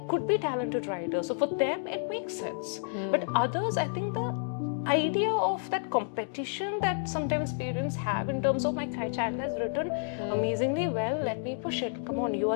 could be talented writers. So for them, it makes sense. But others, I think the idea of that competition that sometimes parents have in terms of my child has written amazingly well, let me push it. Come on, you are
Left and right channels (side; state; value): right; silent; digital silence